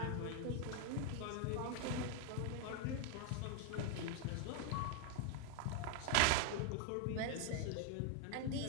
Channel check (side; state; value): both; different; correlation 0.01